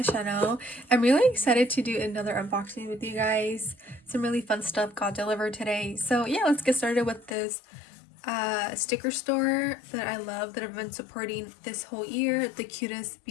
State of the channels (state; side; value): drops out; right; at 7.4 s